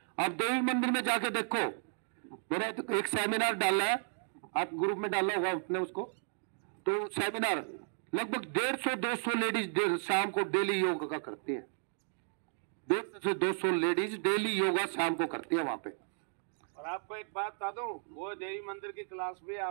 देवी मंदिर में जाके देखो, मैंने तो एक सेमिनार डाला है, आप ग्रुप में डाला होगा आपने उसको, तो सेमिनार लगभग 150-200 लेडीज शाम को डेली योगा का करती हैं। 150 से 200 लेडीज डेली योगा शाम को करती है वहां पे। और आपको एक बात बता दूं, वो देवी मंदिर की क्लास भी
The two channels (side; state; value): left; silent; digital silence